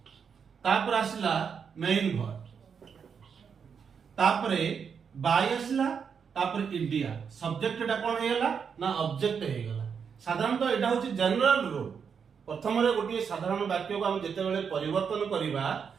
तापर आसिला मेन वर्ब तापरे बाय आसिला तापर इंडिया सब्जेक्ट एटा कोन हेला ना ऑब्जेक्ट हे गेला साधारणतः एटा होची जनरल रूल प्रथम रे गोटे साधारण वाक्य को हम जते बेले परिवर्तन करिवा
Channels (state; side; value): quieter; left; 6.6 dB